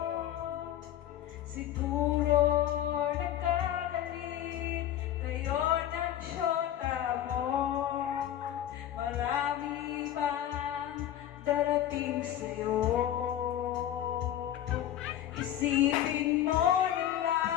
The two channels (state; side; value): quieter; right; 11.6 dB